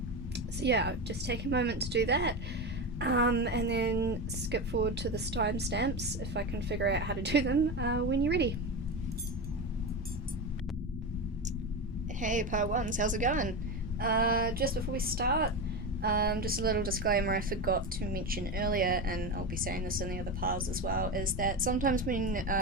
So yeah, just take a moment to do that, and then skip forward to the timestamps if I can figure out how to do them when you're ready. Hey, part ones, how's it going? Just before we start, just a little disclaimer I forgot to mention earlier, and I'll be saying this in the other piles as well, is that sometimes when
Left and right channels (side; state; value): both; normal; correlation 0.19